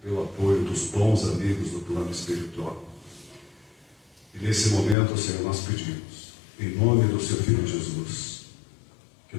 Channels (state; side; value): drops out; right; at 5.0 s